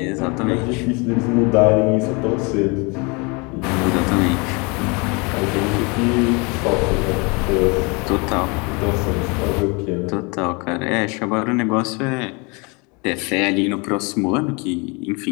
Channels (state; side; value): quieter; right; 29.5 dB